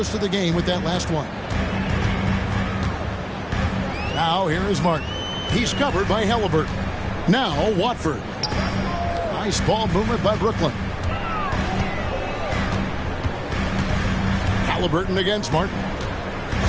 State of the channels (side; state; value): both; identical; correlation 1.00